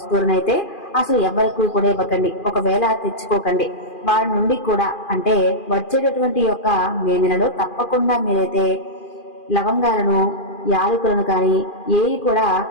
అసలు ఎవరికి కూడా ఇవ్వకండి. ఒకవేళ తెచ్చుకోకండి. వారి నుండి కూడా అంటే వచ్చేటటువంటి యొక్క మే నెలలో తప్పకుండా మీరైతే లవంగాలను, యాలకులను కానీ ఏవి కూడా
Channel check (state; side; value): late; right; 2.4 ms